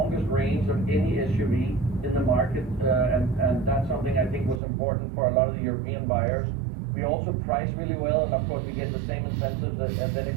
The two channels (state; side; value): drops out; left; at 4.6 s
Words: range of any SUV in the market, and that's something I think was important for a lot of the European buyers. We also price really well, and of course, we get the same incentives as